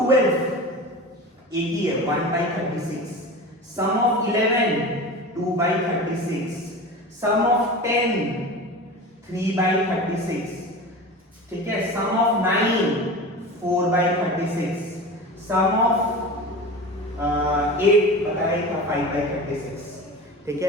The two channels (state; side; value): normal; both; correlation 0.32